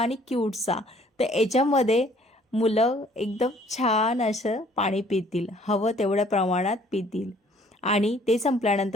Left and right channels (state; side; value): normal; both; correlation 0.59